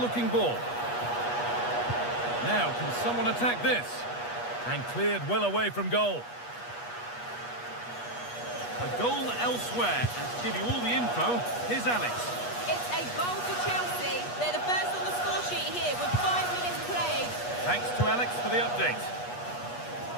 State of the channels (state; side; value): late; right; 8.3 ms